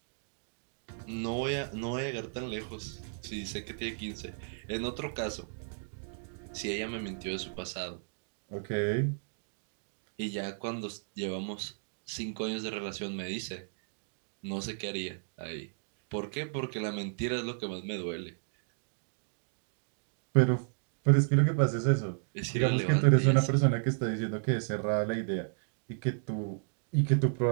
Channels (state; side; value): silent; left; digital silence